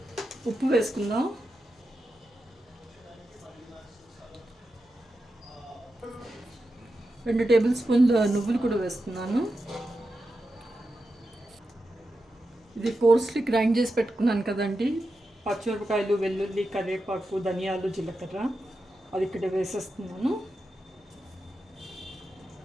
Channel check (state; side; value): normal; both; correlation 0.89